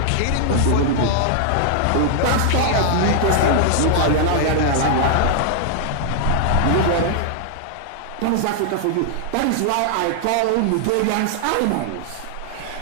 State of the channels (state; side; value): different; both; correlation 0.00